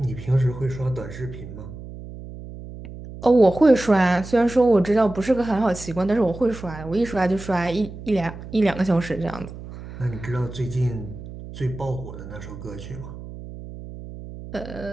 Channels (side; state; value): right; noise; hum, 13 dB below the sound